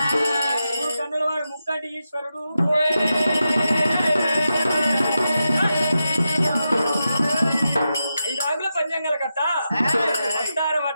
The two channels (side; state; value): both; inverted; correlation -0.88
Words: కన్నుల వాడు ముక్కంటి ఈశ్వరుడు 5 ఆకుల పంచాంగాల కట్ట వస్తారం